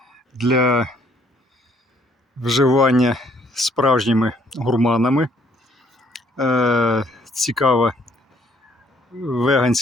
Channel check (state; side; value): normal; both; correlation 0.64